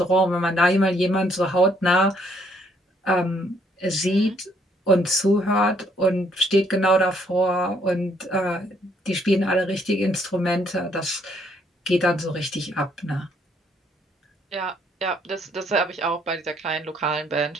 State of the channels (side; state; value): both; normal; correlation 0.68